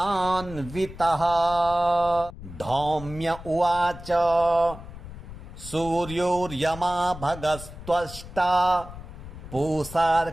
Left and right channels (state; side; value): noise; left; rumble, 14 dB below the sound